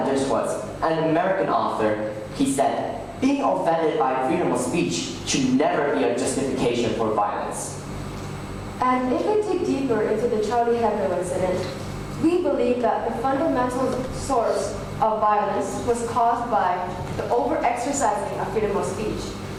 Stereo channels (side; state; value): both; identical; correlation 1.00